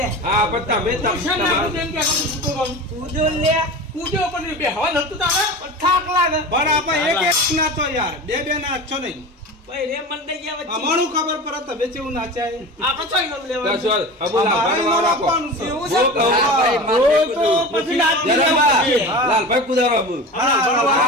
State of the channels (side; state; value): both; normal; correlation 0.31